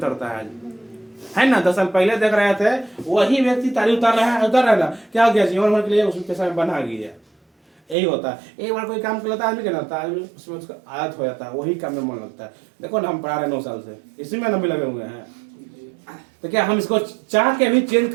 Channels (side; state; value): left; drops out; at 8.0 s